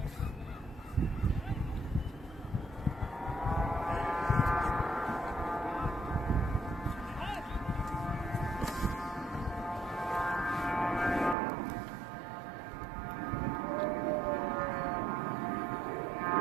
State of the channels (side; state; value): left; drops out; at 11.4 s